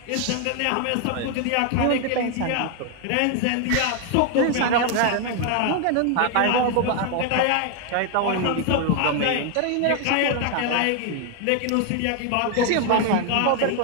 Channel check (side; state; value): both; different; correlation 0.00